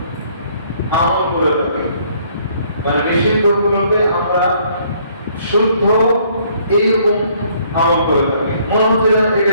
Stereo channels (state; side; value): inverted; both; correlation -0.63